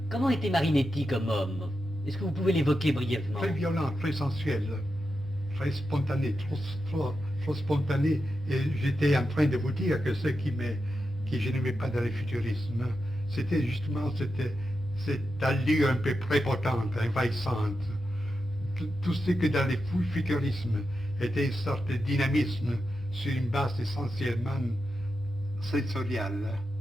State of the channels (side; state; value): both; normal; correlation 0.88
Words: Comment était Marinetti comme homme? Est-ce que vous pouvez l'évoquer brièvement? Très violent, très sensuel, très spontané, trop spontané. Et j'étais en train de vous dire que ce que je n'aimais pas dans le futurisme, c'était justement cette allure un peu prépotente, envahissante. Tout ce que dans le futurisme était une sorte de dynamisme sur une base essentiellement sensoriale,